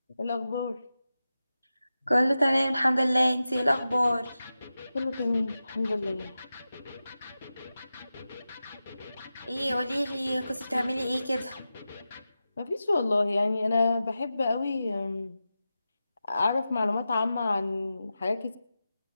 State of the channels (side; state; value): both; inverted; correlation -0.93